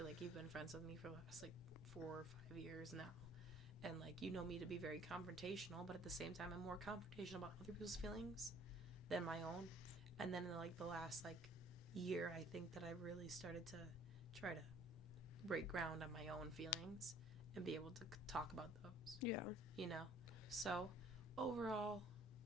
like you've been friends with me for the last like 4 or 5 years now, and like you know me to be very confrontational, but at the same time I'm more confrontational about other people's feelings than my own. And then in like the last like year, I think that I really started to try to break ground on my own feelings and be able to talk about those. Yeah. You know? So overall,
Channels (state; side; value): normal; both; correlation 0.56